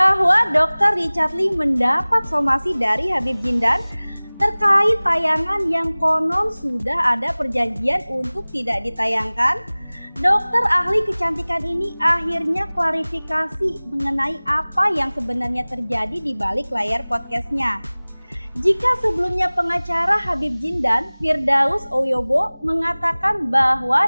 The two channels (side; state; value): both; inverted; correlation -1.00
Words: Dr. Richard Lee mendapat somasi dari Habib Jindan terkait tayangan yang konon sudah ada perjanjian untuk tidak ditayangkan, dokter ahli kecantikan ini akhirnya klarifikasi mengenai apa yang sebenarnya terjadi di balik layar podcastnya. Jika sebelumnya pengacara Habib Jindan, Firdaus Oyobo, mengatakan